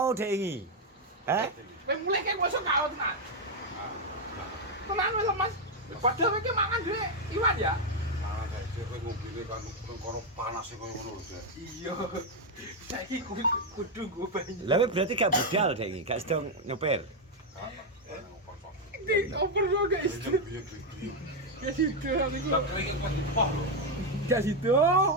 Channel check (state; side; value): normal; both; correlation 0.03